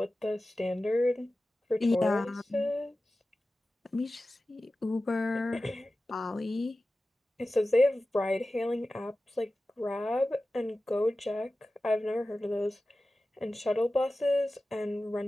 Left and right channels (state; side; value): normal; both; correlation 0.95